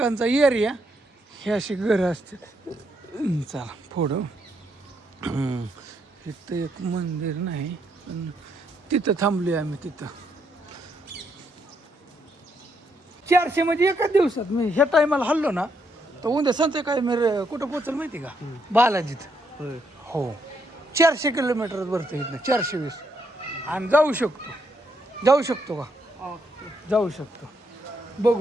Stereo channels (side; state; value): both; normal; correlation 0.76